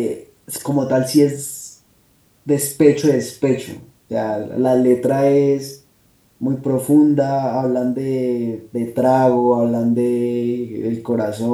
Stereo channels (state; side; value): identical; both; correlation 1.00